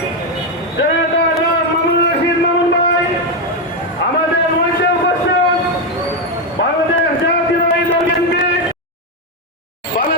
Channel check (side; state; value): both; normal; correlation 0.06